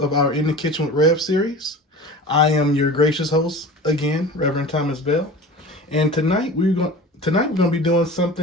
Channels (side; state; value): both; normal; correlation 0.36